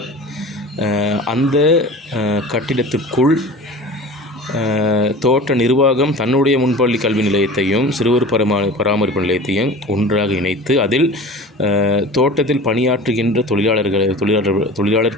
அந்த கட்டிடத்திற்குள் தோட்ட நிர்வாகம் தன்னுடைய முன்பள்ளி கல்வி நிலையத்தையும் சிறுவர் பராமரிப்பு நிலையத்தையும் ஒன்றாக இணைத்து அதில் தோட்டத்தில் பணியாற்றுகின்ற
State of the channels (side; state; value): both; normal; correlation 0.37